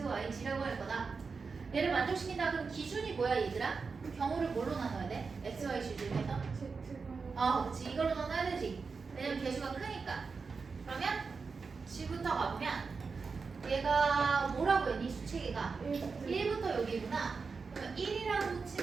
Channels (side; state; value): left; quieter; 4.8 dB